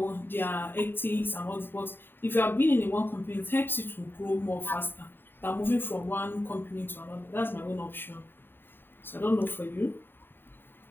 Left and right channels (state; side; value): late; right; 0.098 ms